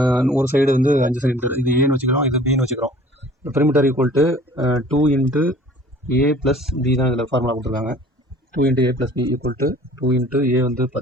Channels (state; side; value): normal; both; correlation 0.50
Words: ஒரு சைடு வந்து 5 சென்டிமீட்டர். இது ஏன்னு வச்சுக்கிறோம், இது பின்னு வச்சுக்கிறோம். Perimeter equal to 2 into A plus B தான் இதில் ஃபார்முலா கொடுத்துருக்காங்க. 2 into A plus B equal to 2 into A வந்து